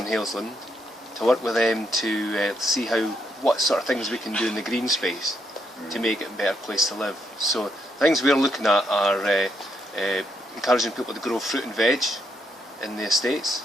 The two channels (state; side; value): normal; both; correlation 0.77